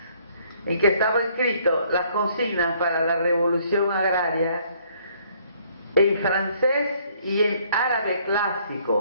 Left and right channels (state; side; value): inverted; both; correlation -0.64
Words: en que estaba escrito las consignas para la revolución agraria en francés y en árabe